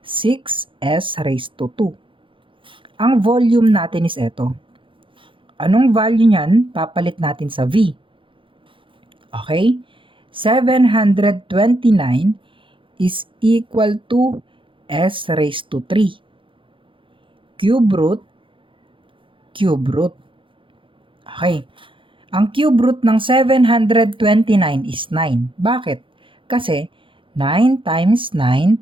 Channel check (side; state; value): left; late; 0.25 ms